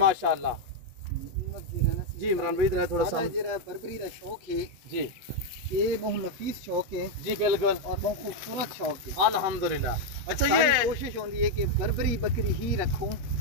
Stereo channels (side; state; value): left; late; 8.1 ms